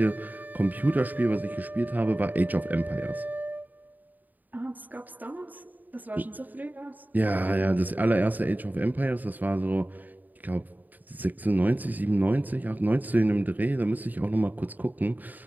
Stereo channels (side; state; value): left; late; 0.085 ms